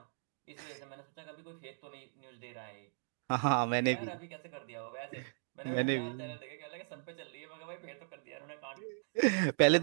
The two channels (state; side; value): silent; left; digital silence